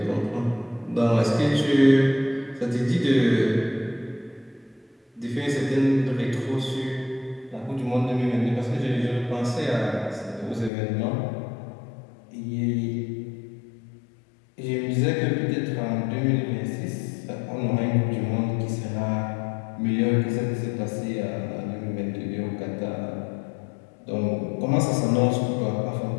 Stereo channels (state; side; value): drops out; right; at 10.7 s